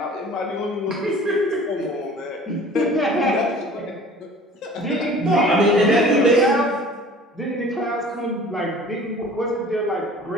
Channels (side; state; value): both; normal; correlation 0.46